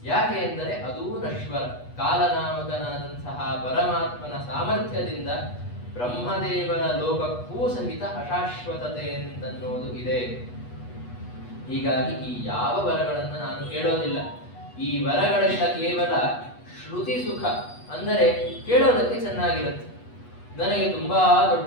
ಯಾಕೆ ಎಂದರೆ ಅದೂ ನಶ್ವರ. ಕಾಲನಾಮಕನಾದಂತಹ ಪರಮಾತ್ಮನ ಸಾಮರ್ಥ್ಯದಿಂದ ಬ್ರಹ್ಮದೇವರ ಲೋಕಕ್ಕೂ ಸಹಿತ ಅಶಾಶ್ವತತೆ ಅಂತನ್ನೋದು ಇದೆ. ಹೀಗಾಗಿ ಈ ಯಾವ ವರಗಳನ್ನು ನಾನು ಕೇಳೋದಿಲ್ಲ. ಈ ವರಗಳೆಲ್ಲ ಕೇವಲ ಶ್ರುತಿ ಸುಖ, ಅಂದರೆ ಕೇಳೋದಕ್ಕೆ ಚೆನ್ನಾಗಿರುತ್ತೆ. ನನಗೆ ತುಂಬಾ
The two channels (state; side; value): late; right; 8.2 ms